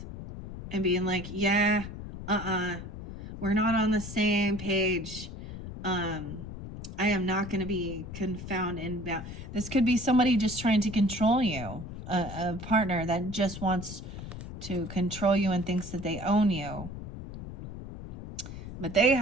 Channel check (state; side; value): noise; left; rumble, 10 dB below the sound